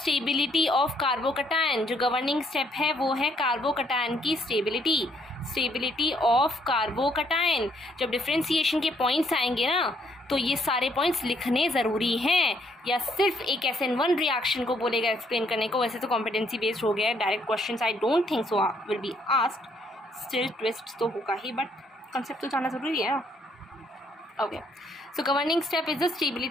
of carbocation, जो गवर्निंग स्टेप है वो है कार्बोकटायन की स्टेबिलिटी ऑफ कार्बोकटायन। जब डिफ्रेंसिएशन के पॉइंट्स आएंगे ना तो ये सारे पॉइंट्स लिखने ज़रूरी हैं, या सिर्फ एक SN1 रिएक्शन को बोलेगा एक्सप्लेन करने को, वैसे तो कॉम्पिटेंसी बेस्ड हो गया है, direct question I don't think so will be asked, still twist तो होगा ही बट कंसेप्ट तो जानना ज़रूरी है। Okay so governing step is the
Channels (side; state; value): both; normal; correlation 0.69